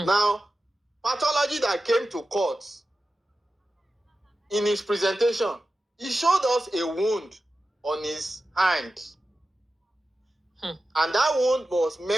pathology that came to court in his presentation, he showed us a wound on his hand. And that wound was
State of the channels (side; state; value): both; normal; correlation 0.93